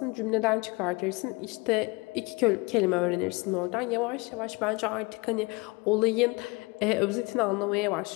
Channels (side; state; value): right; quieter; 26.2 dB